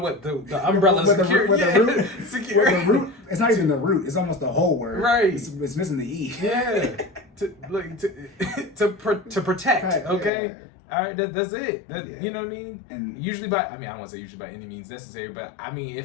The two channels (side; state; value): right; drops out; at 10.3 s